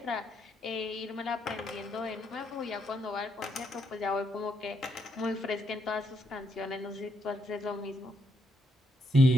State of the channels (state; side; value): normal; both; correlation 0.76